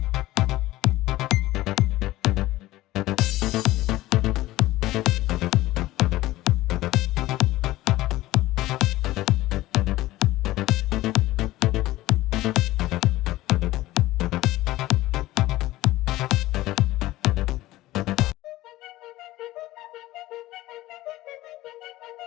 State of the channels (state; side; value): quieter; right; 16.9 dB